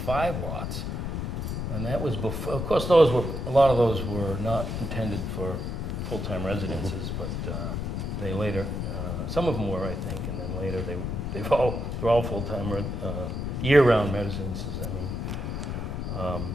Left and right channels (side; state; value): left; noise; rumble, 3 dB below the sound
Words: lots, and that was before. Of course, a lot of those were not intended for full-time residences, but they later, some of them were, I think, and then later they're all full-time year-round residences. I mean,